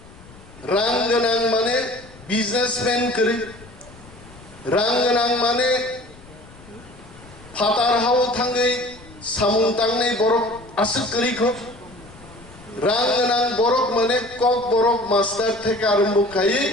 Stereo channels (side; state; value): left; noise; rumble, 21 dB below the sound